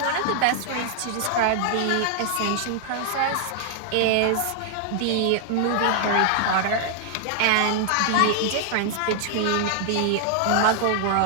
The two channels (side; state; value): both; different; correlation 0.00